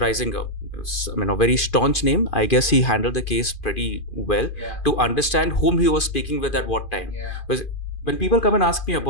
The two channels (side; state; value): right; late; 2.5 ms